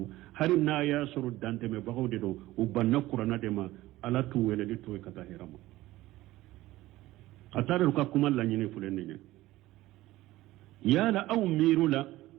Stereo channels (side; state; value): left; quieter; 16.9 dB